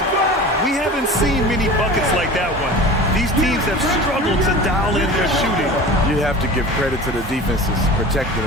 We haven't seen many buckets like that one. These teams have struggled to dial in their shooting. You have to give credit to the defenses. Protecting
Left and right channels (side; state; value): both; normal; correlation 0.36